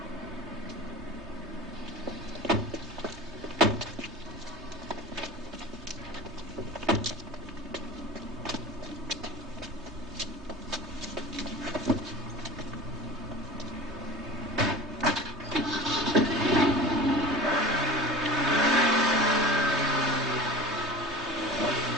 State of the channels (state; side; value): normal; both; correlation 0.36